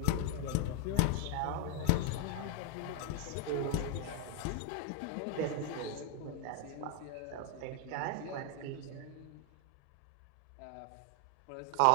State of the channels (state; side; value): different; both; correlation 0.00